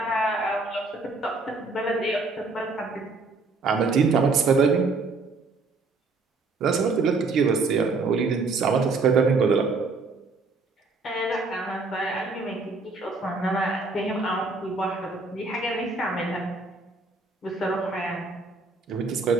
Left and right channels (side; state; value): left; quieter; 3.8 dB